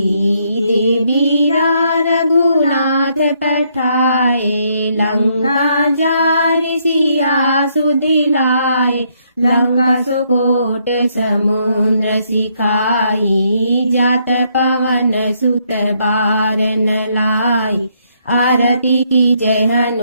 देवीरा रघुनाथ पठाए। लंका जारि सिया सुदिलाए, लंका सुकोट समुद्र सिखाई। जात पवन सुत बार न लाई, आरती की जय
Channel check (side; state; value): both; inverted; correlation -0.72